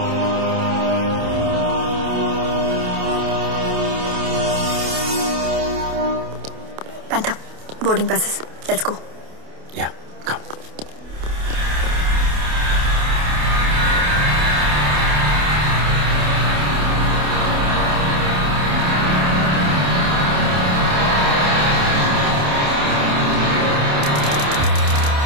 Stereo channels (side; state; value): left; late; 28 ms